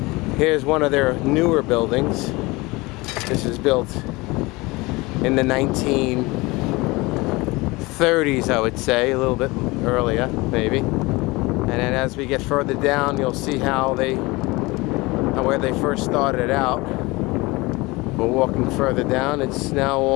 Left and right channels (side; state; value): right; quieter; 23.0 dB